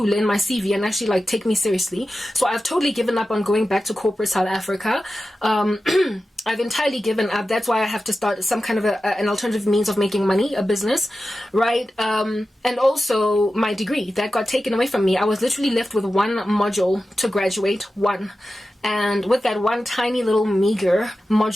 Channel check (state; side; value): normal; both; correlation 0.93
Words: in my CV and actually, take me seriously. So I've totally given up on going back to corporate South Africa. I've entirely given up. That's why I have to start some kind of an alternative means of making money, a business, right? And also my degree that got taken away from me. I was literally left with one module to graduate, one. And with that one tiny little meager